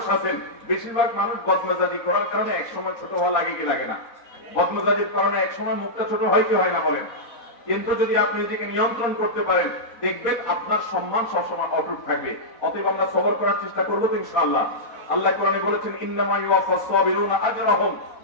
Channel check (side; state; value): right; late; 4.1 ms